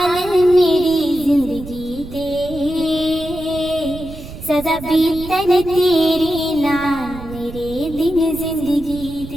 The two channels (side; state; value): right; noise; rumble, 13 dB below the sound